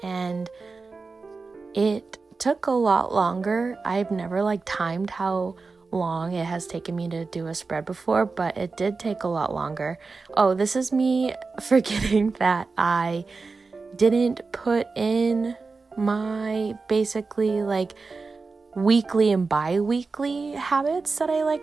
and it took a lot longer. I've never timed how long it has taken me to do a spread before, but it did take a lot longer. Oh, this is me forgetting that I didn't put in my basically weekly and bi-weekly habits that I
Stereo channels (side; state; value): left; quieter; 4.2 dB